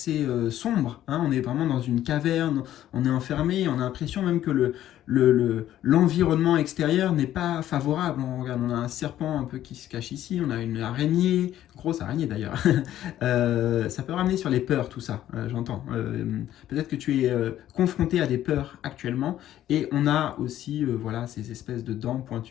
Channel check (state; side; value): quieter; right; 12.4 dB